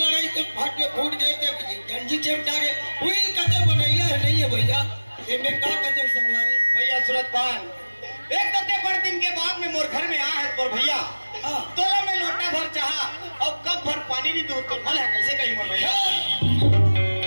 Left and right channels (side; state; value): both; inverted; correlation -1.00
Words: तो फाटे फूट गए थे, गंजी चिपटा गए। हुई कदम बनैया है नहीं है भैया, इनने का कदम संगवारी भैया सूरत पान। एक तो बड़े दिन के बाद में मोर घर में आ है पर भैया तोला में लोटा भर चाहा और कब भर पानी नहीं दूध तो मल है कैसे कहीं मोर भैया।